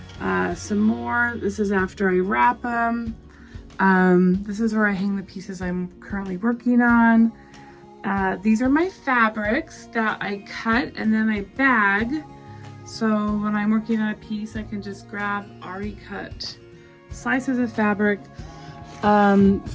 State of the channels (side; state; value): both; identical; correlation 1.00